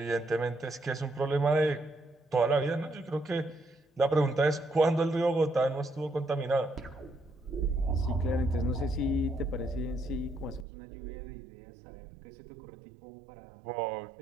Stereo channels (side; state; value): left; drops out; at 10.7 s